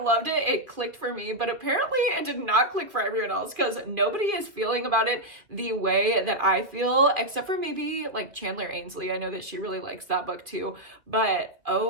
it. It clicked for me, but apparently it did not click for everyone else because nobody is feeling about it the way that I feel, except for maybe like Chandler Ainsley. I know that she really likes that book too, but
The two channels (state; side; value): late; left; 2.4 ms